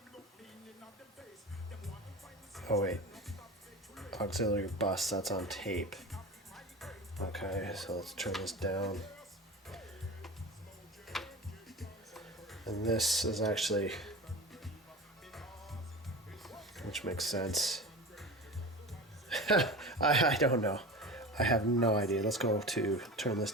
Oh wait, auxiliary bus, that's on tape. Okay, so let's turn this down. And this is actually, which makes sense. I don't know. I have no idea. Let's go to, turn this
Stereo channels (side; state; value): both; normal; correlation 0.32